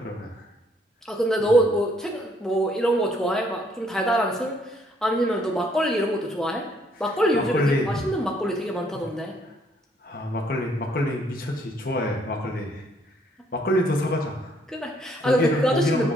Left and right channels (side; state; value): both; normal; correlation 0.67